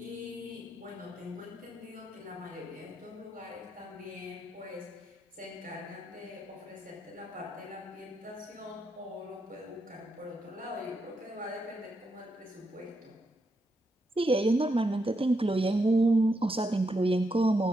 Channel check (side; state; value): both; normal; correlation 0.81